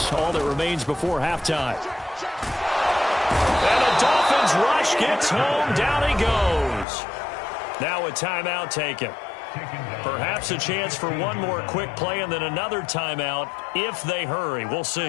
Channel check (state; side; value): drops out; right; at 6.9 s